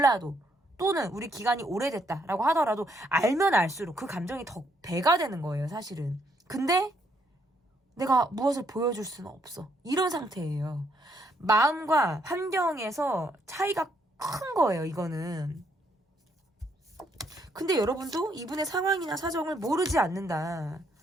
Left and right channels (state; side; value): normal; both; correlation 0.72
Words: 또는 우리 기간이 오래됐다라고 하더라도 알면 알수록 그 감정이 더 배가 되는 거예요. 사실은. 근데 내가 무엇을 보여줄 수는 없어. 이런 상태예요. 마음과 환경에서 차이가 큰 거예요, 이거는. 근데 여러분도 이분의 상황이나 사정을 모르지 않는다.